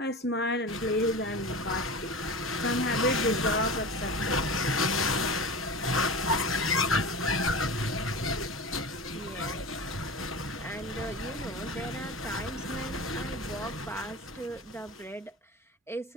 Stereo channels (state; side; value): normal; both; correlation 0.30